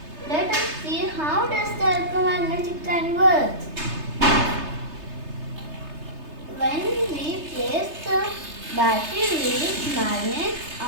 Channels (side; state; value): left; late; 3.3 ms